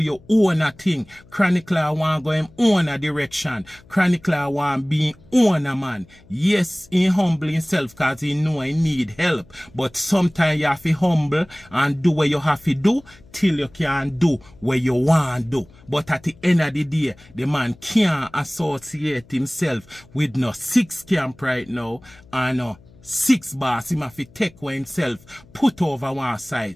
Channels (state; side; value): noise; left; hum, 26 dB below the sound